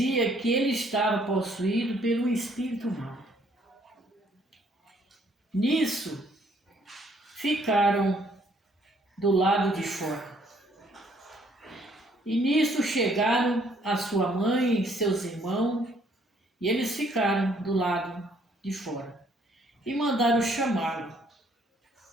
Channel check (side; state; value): both; normal; correlation 0.65